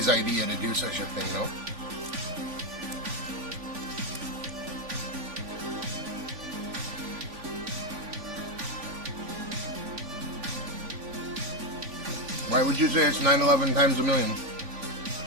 idea to do such a thing, no? Why would you say it's 9/11 times a million?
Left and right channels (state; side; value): late; left; 3.4 ms